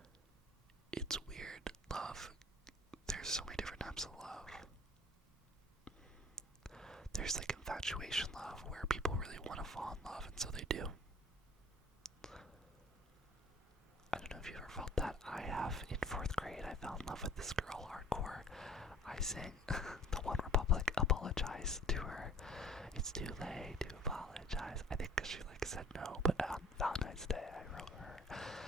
It's weird. Love. There's so many different types of love. There's infatuation love, where people really want to fall in love, and so they do. I don't know if you've ever felt that. I have. In 4th grade, I fell in love with this girl hardcore. I sang the One Republic Apologize to her. It's too late to apologize. I think because she said no, but on Valentine's Day, I wrote her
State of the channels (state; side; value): normal; both; correlation 0.50